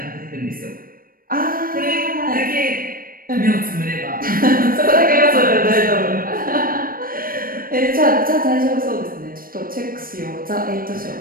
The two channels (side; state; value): left; late; 0.41 ms